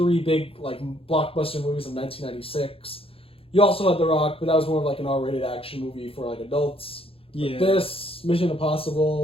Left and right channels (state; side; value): late; right; 0.27 ms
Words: big, blockbuster movies of 1996. You also had The Rock, but that was more of an R-rated action movie for adults. Yeah. But this, Mission